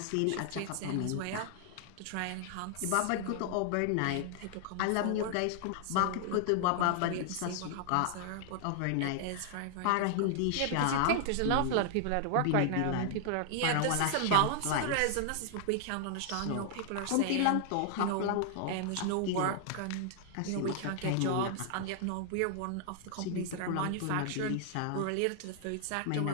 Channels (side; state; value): both; different; correlation 0.00